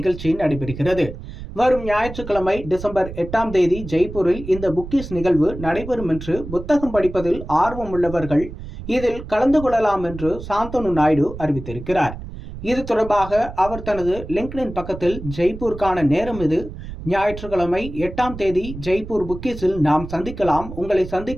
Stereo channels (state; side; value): noise; right; rumble, 11 dB below the sound